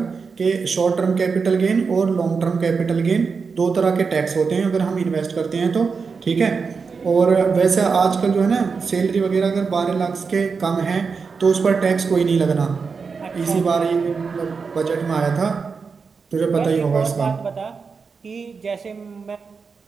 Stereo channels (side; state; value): left; quieter; 5.2 dB